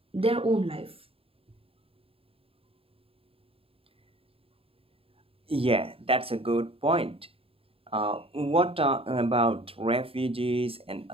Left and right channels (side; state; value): left; late; 0.27 ms